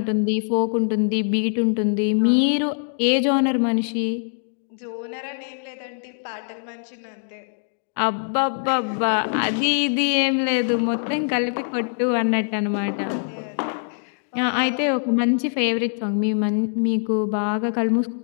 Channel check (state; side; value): silent; right; digital silence